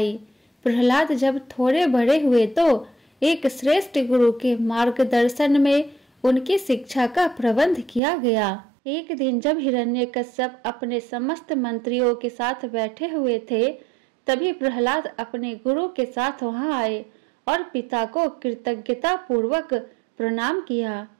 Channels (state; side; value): drops out; left; at 8.0 s